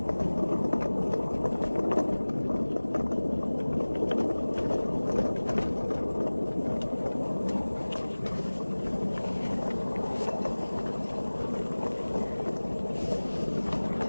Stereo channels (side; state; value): both; inverted; correlation -1.00